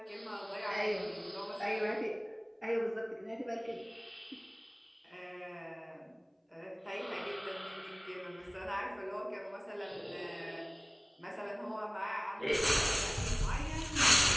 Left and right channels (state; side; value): identical; both; correlation 1.00